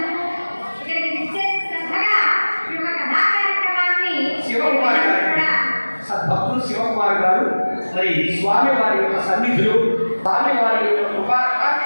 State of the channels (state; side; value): inverted; both; correlation -1.00